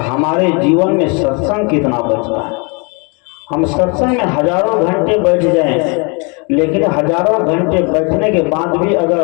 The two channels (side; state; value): right; quieter; 32.4 dB